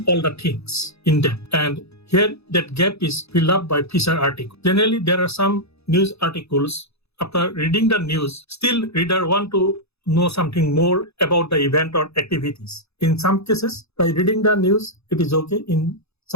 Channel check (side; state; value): right; late; 0.79 ms